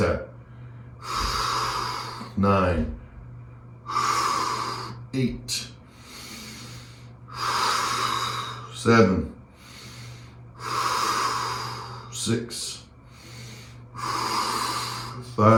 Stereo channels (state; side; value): identical; both; correlation 1.00